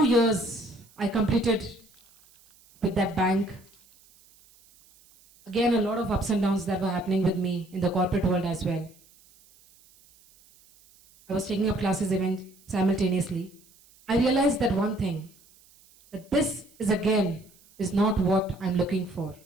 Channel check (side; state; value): right; noise; hiss, 29 dB below the sound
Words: years I completed with that bank. Again, a lot of ups and downs that were happening with me in the corporate world as well. I was taking up classes even simultaneously. I realized that one thing, that this is not what I'm looking for.